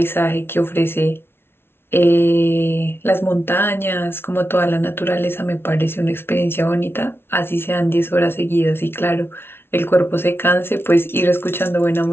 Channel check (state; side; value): late; right; 0.11 ms